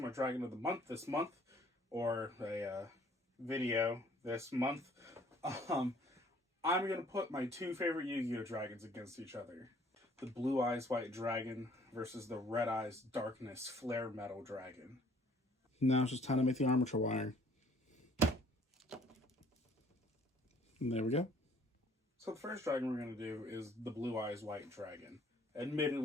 my Dragon of the Month this month, or a video this month, I'm going to put my two favorite Yu-Gi-Oh dragons against each other. The Blue Eyes White Dragon versus the Red Eyes Darkness Flare Metal Dragon. Now it's just time to make the armature wire. And there we go. So the first dragon we're going to do is the Blue Eyes White Dragon.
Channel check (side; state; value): both; normal; correlation 0.58